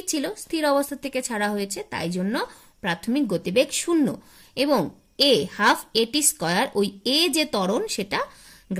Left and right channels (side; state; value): both; identical; correlation 1.00